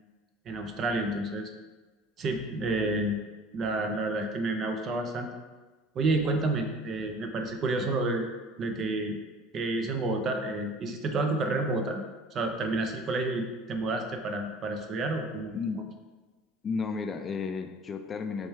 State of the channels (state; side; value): normal; both; correlation 0.48